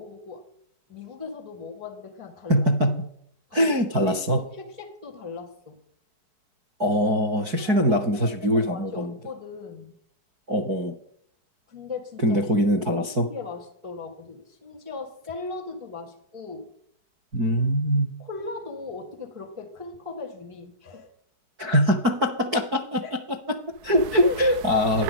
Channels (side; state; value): left; late; 4.6 ms